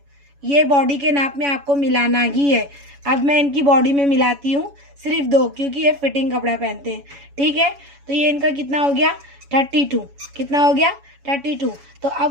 ये बॉडी के नाप में आपको मिलाना ही है। अब मैं इनकी बॉडी में मिलाती हूँ सिर्फ 2, क्योंकि ये फिटिंग कपड़ा पहनते हैं। ठीक है, तो ये इनका कितना हो गया 32, कितना हो गया 32। तो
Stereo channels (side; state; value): left; late; 7.1 ms